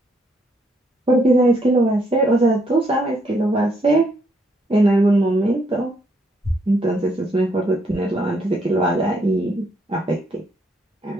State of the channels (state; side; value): normal; both; correlation 0.72